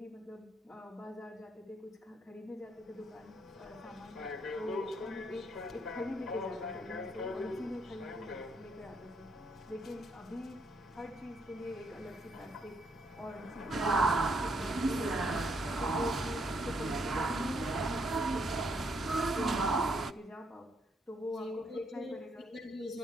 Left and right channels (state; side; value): normal; both; correlation 0.73